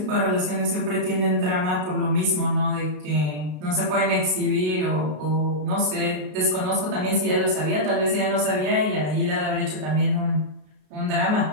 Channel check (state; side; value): late; left; 32 ms